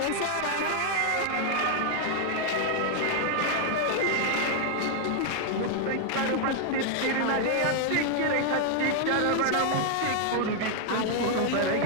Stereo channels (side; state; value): both; different; correlation 0.00